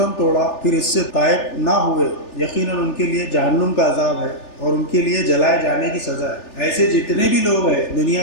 توڑا پھر اس سے تائب نہ ہوئے، یقیناً ان کے لیے جہنم کا عذاب ہے اور ان کے لیے جلائے جانے کی سزا ہے۔ ایسے جتنے بھی لوگ ہیں دنیا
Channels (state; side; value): late; right; 3.4 ms